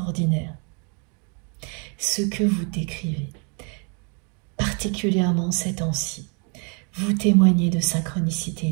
ce que vous décrivez, particulièrement ces temps-ci. Vous témoignez de synchronicité,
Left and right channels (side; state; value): left; quieter; 36.5 dB